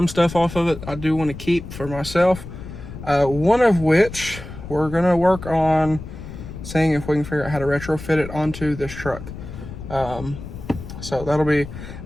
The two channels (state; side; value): noise; left; rumble, 12 dB below the sound